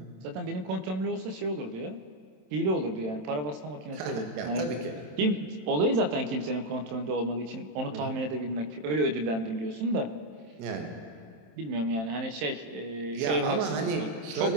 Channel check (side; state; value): left; late; 27 ms